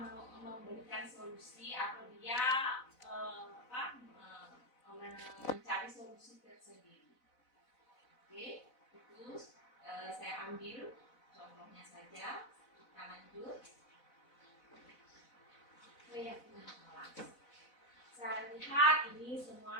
memberikan solusi atau dia mencari solusi tersendiri. Oke, itu saya ambil contohnya saja. Kita lanjut. Keyakinan kelas. Saya lihat ini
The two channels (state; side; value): late; right; 4.0 ms